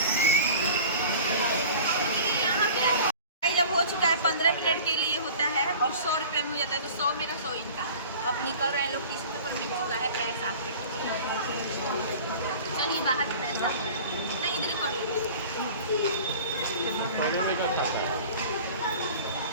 जब हो चुका है 15 मिनट के लिए होता है और 100 रुपये में हो जाता है, तो 100 मेरा 100 इनका। अब निकल रहे हैं लोग, टिश्यू पेपर मिल चुका है, पैर साफ कर। चलिए बाहर से पैर साफ कर, नहीं इधर कर लो।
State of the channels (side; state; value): both; inverted; correlation -0.41